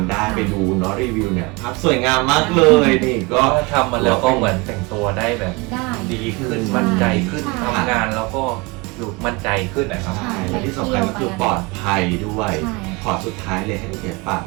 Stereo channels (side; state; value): left; quieter; 26.5 dB